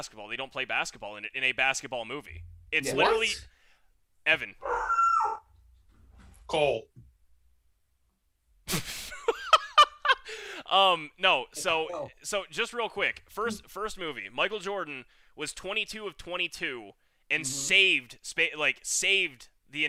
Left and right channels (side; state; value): both; identical; correlation 1.00